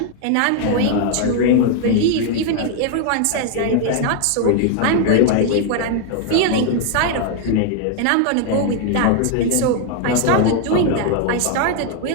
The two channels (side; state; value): both; different; correlation 0.00